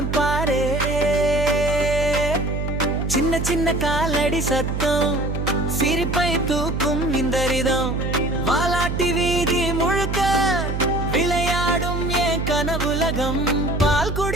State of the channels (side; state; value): right; noise; hum, 2 dB below the sound